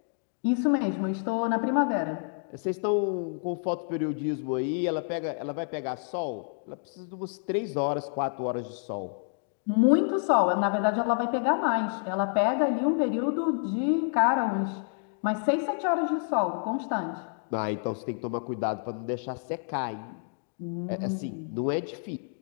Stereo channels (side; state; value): right; silent; 59 dB below the other